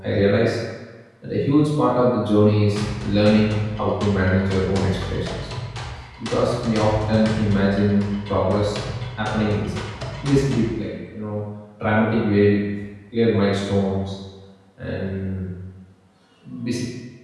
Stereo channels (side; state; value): both; identical; correlation 1.00